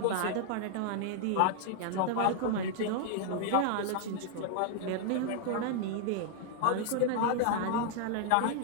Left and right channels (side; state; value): both; different; correlation 0.00